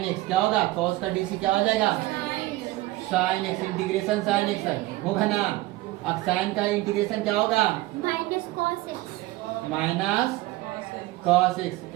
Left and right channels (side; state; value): left; quieter; 18.5 dB